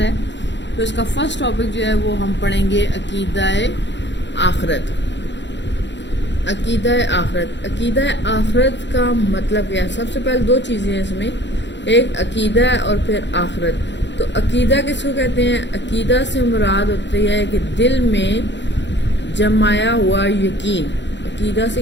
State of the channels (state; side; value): late; right; 0.52 ms